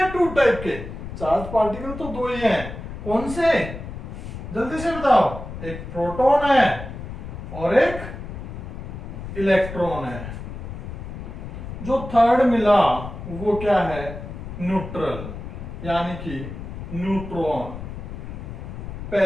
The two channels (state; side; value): noise; left; rumble, 9 dB below the sound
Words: 2 टाइप के। चार्ज पार्टिकल तो 2 ही हैं, कौन से, जल्दी से बताओ। एक प्रोटॉन है और एक इलेक्ट्रॉन है। जो थर्ड मिला वो क्या है, न्यूट्रल, यानी कि न्यूट्रॉन।